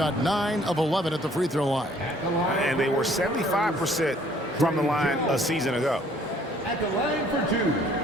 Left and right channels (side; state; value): both; normal; correlation 0.59